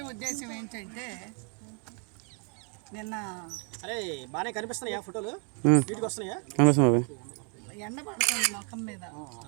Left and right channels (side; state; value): left; quieter; 37.8 dB